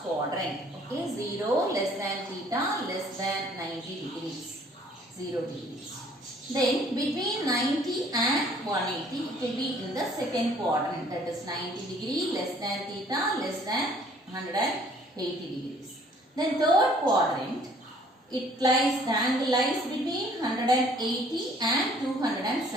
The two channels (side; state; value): both; normal; correlation 0.58